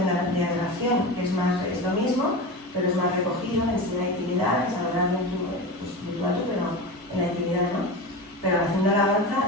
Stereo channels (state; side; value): normal; both; correlation 0.26